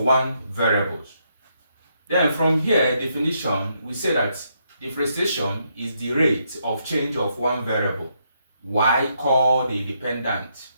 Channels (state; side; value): inverted; both; correlation -0.77